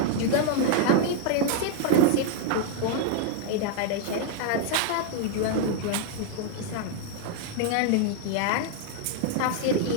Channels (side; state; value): both; different; correlation 0.00